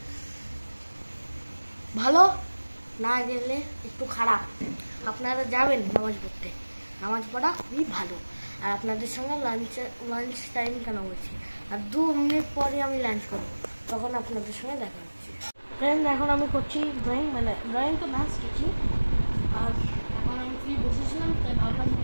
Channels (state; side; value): inverted; both; correlation -1.00